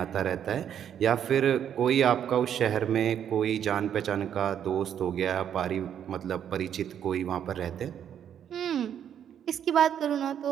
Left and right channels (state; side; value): quieter; left; 9.3 dB